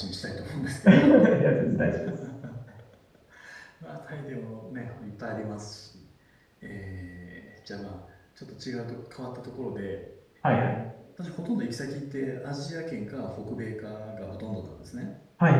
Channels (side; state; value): both; identical; correlation 1.00